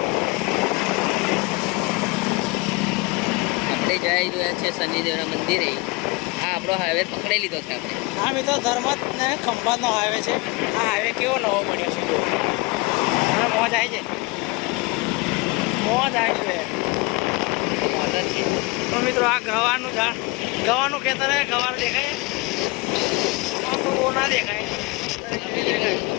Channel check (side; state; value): right; quieter; 25.2 dB